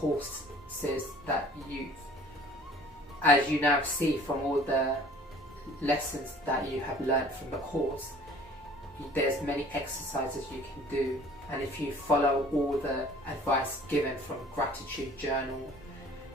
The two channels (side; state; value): both; normal; correlation 0.50